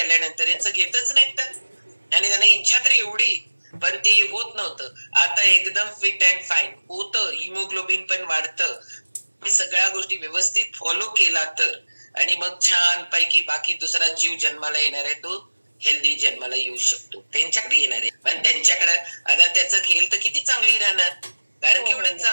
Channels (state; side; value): inverted; both; correlation -1.00